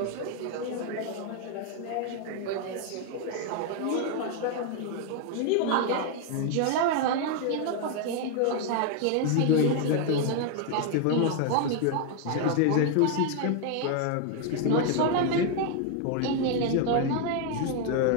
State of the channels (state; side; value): different; both; correlation 0.01